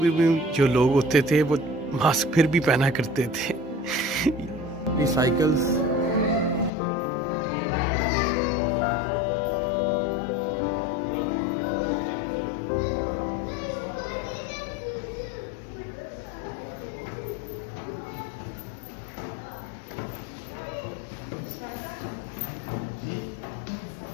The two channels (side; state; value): right; drops out; at 6.7 s